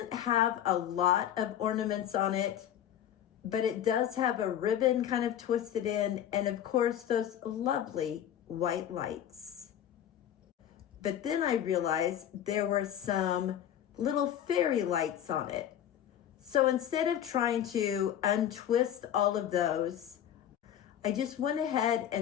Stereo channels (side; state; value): right; quieter; 10.5 dB